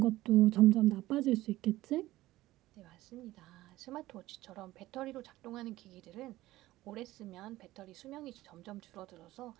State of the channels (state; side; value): quieter; left; 16.7 dB